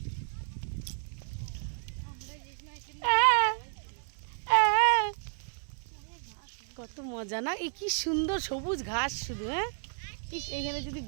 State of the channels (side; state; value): left; silent; digital silence